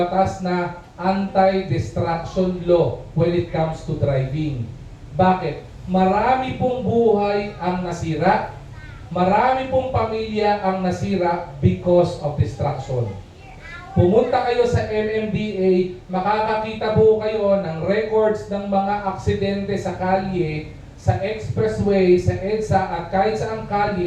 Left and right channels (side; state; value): both; identical; correlation 1.00